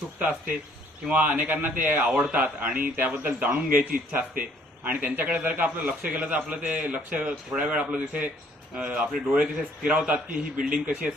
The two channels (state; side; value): normal; both; correlation 0.62